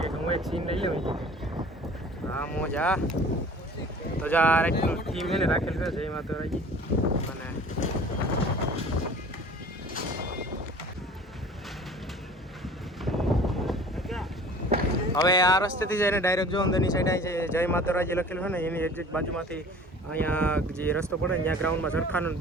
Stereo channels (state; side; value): normal; both; correlation 0.45